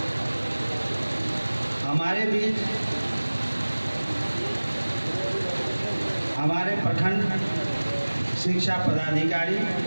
हमारे बीच हमारे प्रखंड शिक्षा पदाधिकारी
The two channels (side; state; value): both; inverted; correlation -1.00